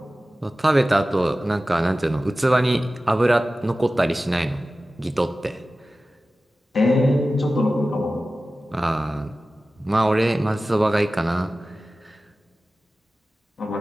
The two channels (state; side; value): normal; both; correlation 0.96